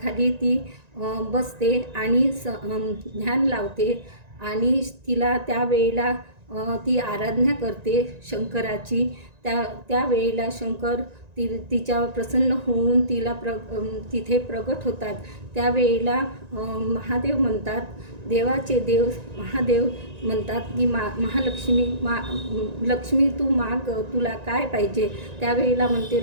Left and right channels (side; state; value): left; late; 1.9 ms